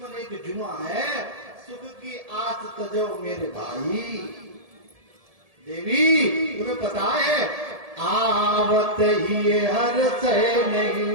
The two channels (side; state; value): left; late; 1.7 ms